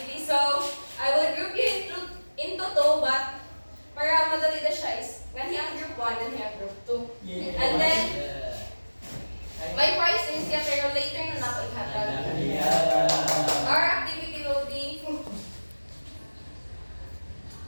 So I will group you into two, but para madali na siya is ganhi ang group 1 and ang group 2. And then my prize is siya pero later na nato ihatag. Our activity will be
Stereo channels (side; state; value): both; inverted; correlation -1.00